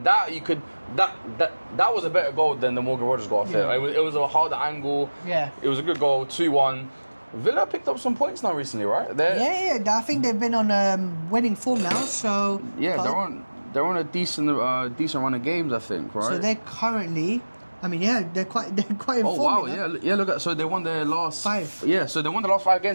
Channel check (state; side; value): inverted; both; correlation -1.00